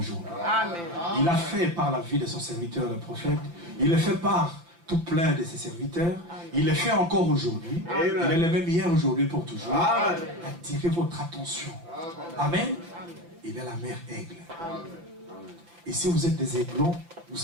Amen. Il a fait par la vie de son serviteur, le prophète. Il le fait par tout plein de ses serviteurs. Il le fait encore aujourd'hui. Il est le même hier, aujourd'hui, pour toujours. Attirez votre attention. Amen. Il est la mère aigle. Et si vous êtes des aiglons, vous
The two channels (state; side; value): late; left; 5.9 ms